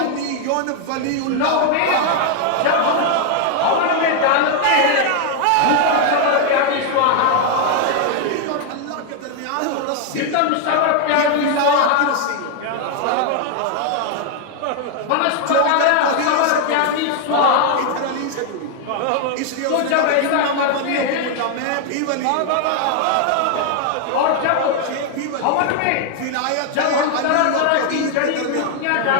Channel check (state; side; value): different; both; correlation 0.00